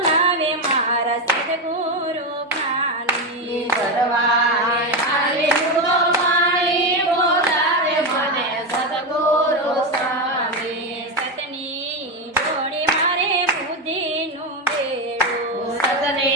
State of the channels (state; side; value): normal; both; correlation 0.12